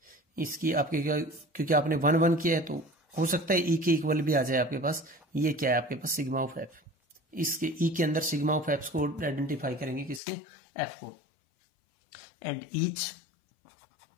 इसकी आपके क्या, क्योंकि आपने 1 1 किया है तो हो सकता है ई के इक्वल भी आ जाए आपके पास। ये क्या है आपके पास सिग्मा ऑफ एफ, इसके ई के अंदर सिग्मा ऑफ एफ को आइडेंटिफाई करेंगे किसके, एफ को। And each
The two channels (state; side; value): drops out; right; at 10.2 s